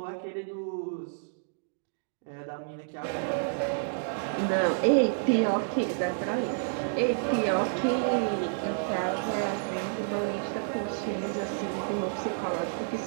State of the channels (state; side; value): silent; left; digital silence